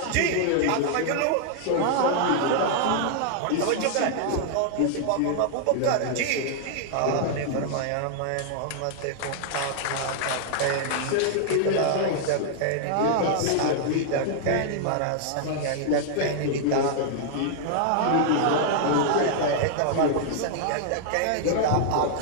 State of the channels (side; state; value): both; different; correlation -0.01